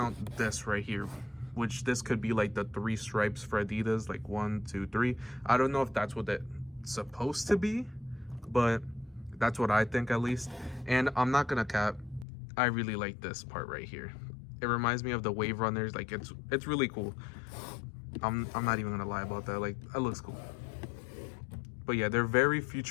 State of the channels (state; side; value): drops out; right; at 12.2 s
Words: this right here, which this could be like the 3 stripes for Adidas, like 1, 2, 3. I don't know if that's what it's supposed to be, but that's what I think, at least. And I'm not gonna cap, I really like this part right here. It reminds me of the Wave Runners. Like it's really cool. I'm not even gonna lie about that. Like that looks cool. But yeah, they're very